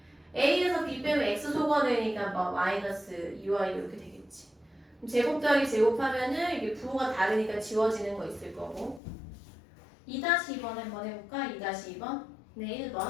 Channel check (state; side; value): drops out; right; at 9.0 s